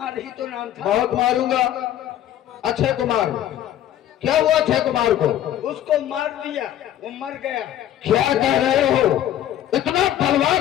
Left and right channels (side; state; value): right; quieter; 11.7 dB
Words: ही तो नाम था। बहुत मारूंगा। अक्षय कुमार क्या हुआ? अक्षय कुमार को उसको मार दिया, वो मर गया। क्या कह रहे हो? इतना बलवान